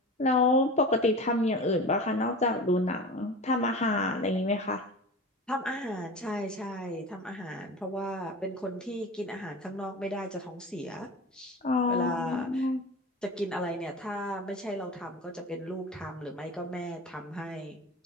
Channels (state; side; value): normal; both; correlation 0.33